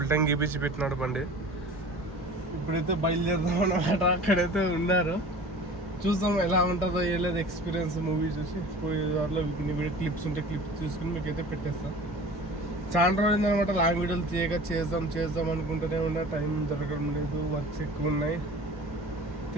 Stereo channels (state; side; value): normal; both; correlation 0.41